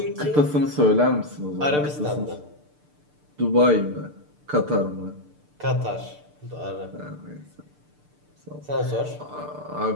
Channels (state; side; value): late; left; 6.7 ms